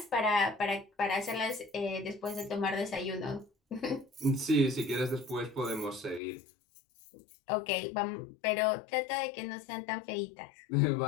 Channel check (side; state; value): right; drops out; at 6.2 s